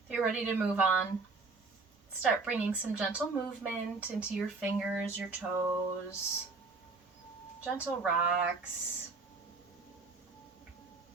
If you're ready to move on, start bringing some gentle movement into your fingers, your toes, gentle rocks.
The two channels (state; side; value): quieter; left; 3.9 dB